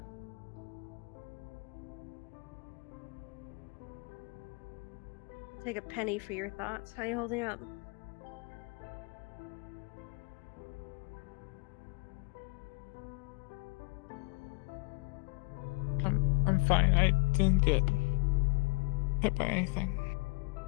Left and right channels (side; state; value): right; quieter; 28.0 dB